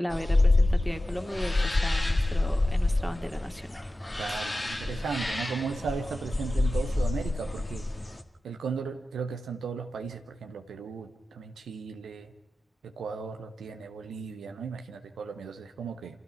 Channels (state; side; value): normal; both; correlation 0.93